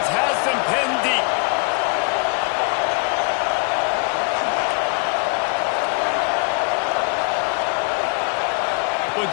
has them pinned deep.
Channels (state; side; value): quieter; right; 34.0 dB